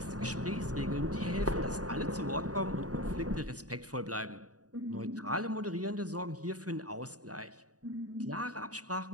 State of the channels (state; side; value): late; left; 0.67 ms